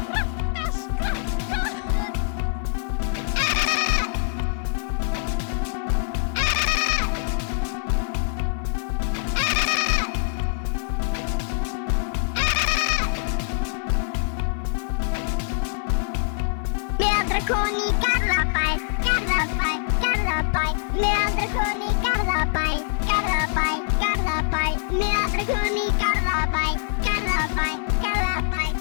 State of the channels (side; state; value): right; silent; 63 dB below the other